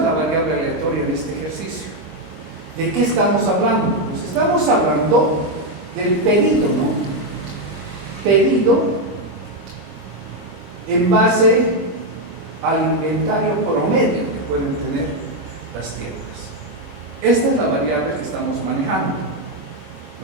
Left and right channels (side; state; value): left; late; 25 ms